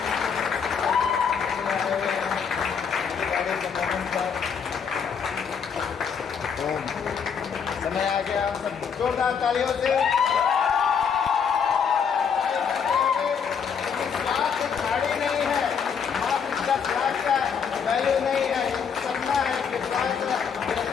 समय आ गया, सब जोरदार तालियों से गाड़ी नहीं है, मात्र 10 लाख का वैल्यू नहीं है, सपना है कि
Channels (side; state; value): right; quieter; 6.8 dB